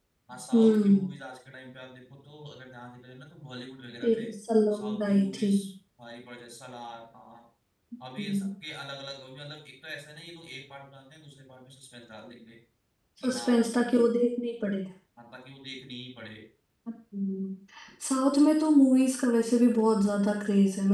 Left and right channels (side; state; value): both; identical; correlation 1.00